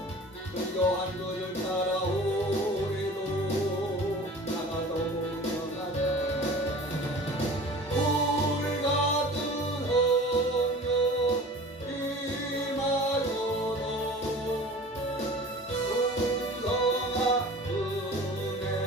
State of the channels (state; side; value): normal; both; correlation 0.41